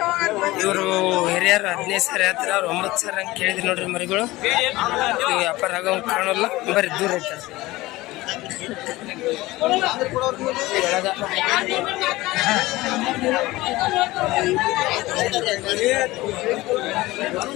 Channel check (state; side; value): quieter; right; 19.1 dB